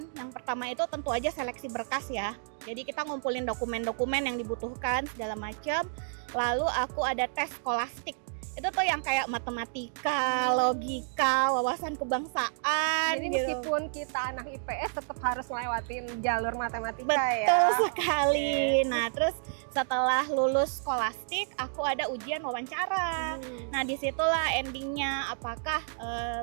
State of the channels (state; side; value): silent; left; digital silence